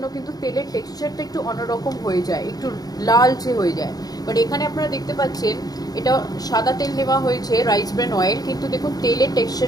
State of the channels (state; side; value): late; right; 0.18 ms